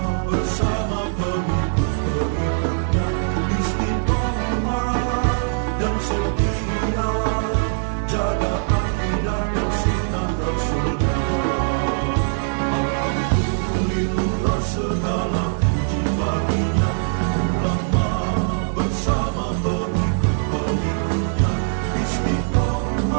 bersama pengikut-pengikutnya istiqomah dan setia jaga akidah dan sunnah Rasulullah. Alhamdulillah segala puji baginya ulama bersama pengikut-pengikutnya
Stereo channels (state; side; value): silent; left; digital silence